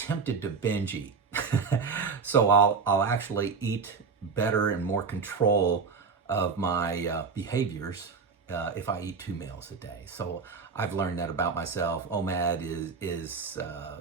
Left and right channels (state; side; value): quieter; left; 5.1 dB